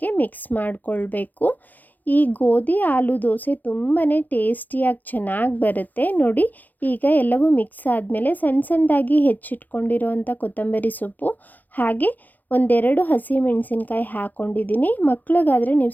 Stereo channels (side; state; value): right; late; 0.083 ms